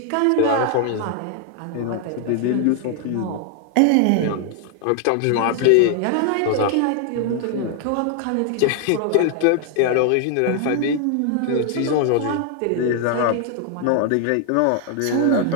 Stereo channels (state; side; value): different; both; correlation 0.00